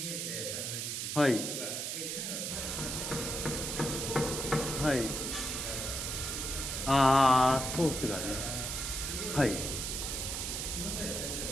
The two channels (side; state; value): right; noise; hiss, 3 dB below the sound